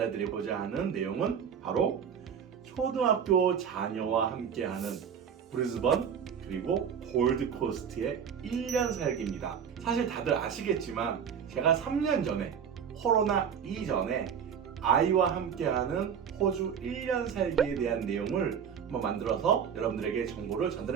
드리고자 하는 내용은 바로 초등학교 자녀와 함께하는 브리즈번 그리고 골드코스트의 1년 살기입니다. 사실 다들 아시겠지만 제가 3년 전에 코로나 이전에 아이와 함께하는 호주 1년 살기에 대한 내용을 한번 만들어서 여러분들에게 정보를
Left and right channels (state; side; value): quieter; left; 7.6 dB